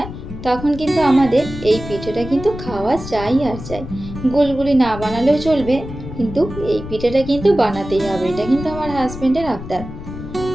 তখন কিন্তু আমাদের এই পিঠেটা কিন্তু খাওয়া চাই আর চাই। গুলগুলি না বানালেও চলবে, কিন্তু এই পিঠেটা কিন্তু বানাতেই হবে। এটা কিন্তু আমার হাজবেন্ডের আবদার।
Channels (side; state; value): left; noise; rumble, 11 dB below the sound